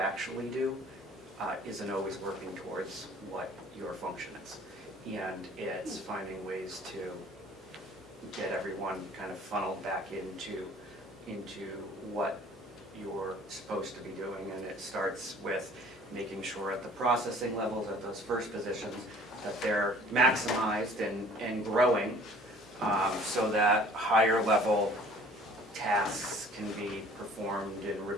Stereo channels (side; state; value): both; normal; correlation 0.51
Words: do isn't always working towards what your function is. And it's finding ways to get everyone kind of funneled back into what you're supposed to be doing. And it starts with making sure at the processing levels, at those first positions, that they're maximized and growing, so that higher level tasks can be performed and